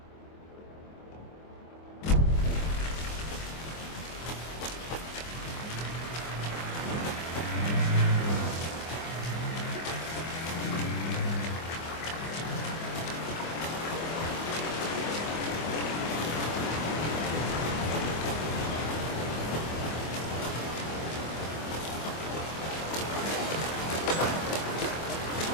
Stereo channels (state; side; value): late; right; 24 ms